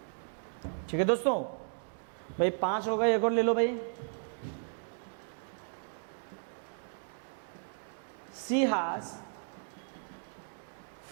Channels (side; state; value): left; silent; digital silence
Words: ठीक है दोस्तों, भाई 5 हो गए, एक और ले लो भाई। She has